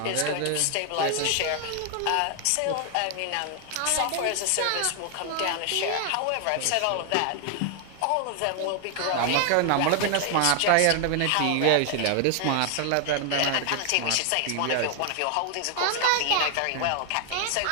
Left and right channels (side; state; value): both; different; correlation 0.00